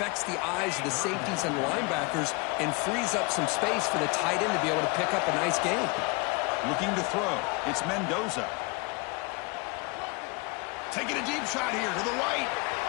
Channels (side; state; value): right; quieter; 27.9 dB